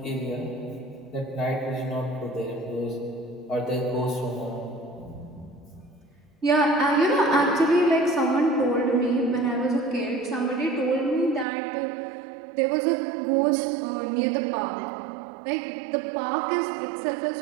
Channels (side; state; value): left; drops out; at 11.5 s